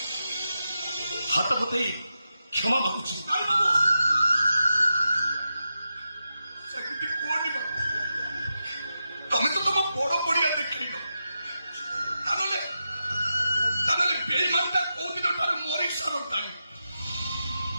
हाथ पतई क्षमा मागुची बाबू ସେମିତି କୁହନି ବାବୁ ତମେ ତ ତମ ବଡ ପଡିଆ ଦେଖେଇଲ ତାହେଲେ ବେଇମାନଟା କୋଉ ଦିନ ଠାରୁ ମରି ସାରନ୍ତାଣି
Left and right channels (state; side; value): inverted; both; correlation -0.89